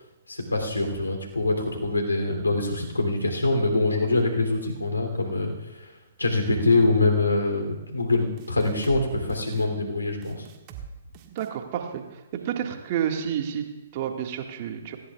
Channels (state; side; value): inverted; both; correlation -0.74